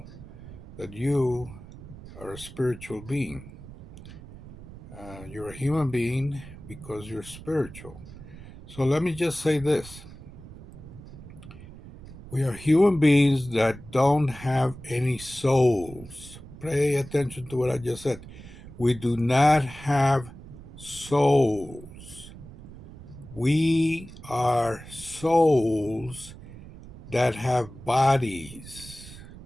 that you are a spiritual being. You're a human being because you're spiritual. So let me just say this. We are human beings that don't have any souls. Pay attention to what I just said. We do not have souls. We are souls that have bodies.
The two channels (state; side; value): noise; right; rumble, 16 dB below the sound